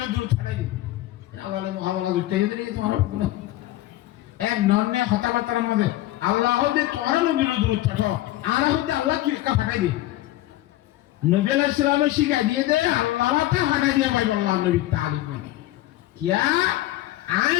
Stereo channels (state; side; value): quieter; right; 15.8 dB